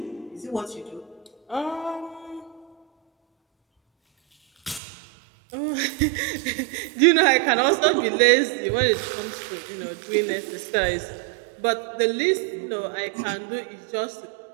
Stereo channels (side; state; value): left; drops out; at 4.8 s